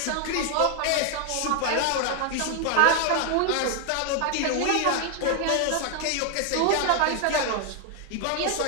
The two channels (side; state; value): both; different; correlation 0.01